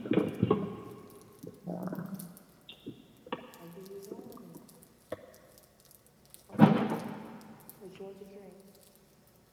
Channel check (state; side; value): identical; both; correlation 1.00